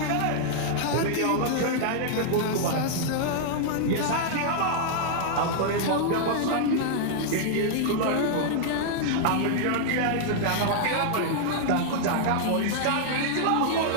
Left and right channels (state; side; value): different; both; correlation -0.01